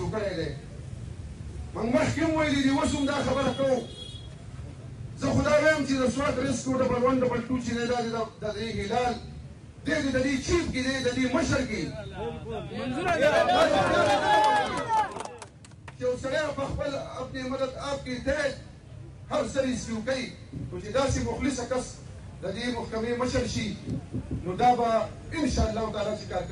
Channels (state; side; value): identical; both; correlation 1.00